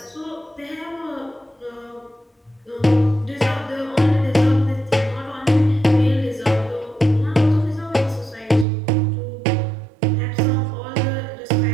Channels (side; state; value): left; drops out; at 8.7 s